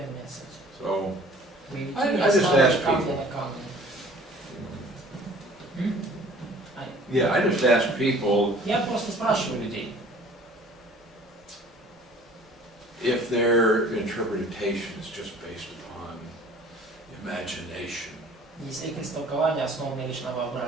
нет с этим. So, Вы I не just ставите ask камни people. на камни. yeah, I just ask people Я просто спрашиваю людей, if their interpretation is just based upon imagination, если их истолкование основано лишь на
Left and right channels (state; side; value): normal; both; correlation 0.50